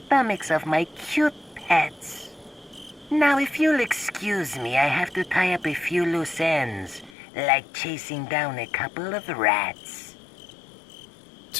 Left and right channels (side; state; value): right; drops out; at 7.2 s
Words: of my cute pets. Now, if you'll excuse me, I have to tie up a few loose ends, like chasing down a couple of rats.